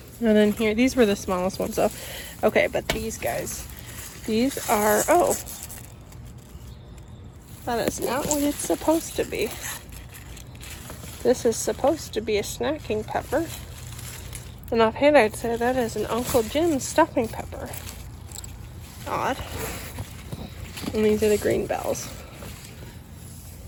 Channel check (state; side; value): identical; both; correlation 1.00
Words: then here, these were the smallest ones though. Okay, but these guys, these are, oh, that is not what it's supposed to be. This is supposed to be a snacking pepper. And offhand, I'd say that is an Uncle Jim's stuffing pepper. Odd. And these are the green bells.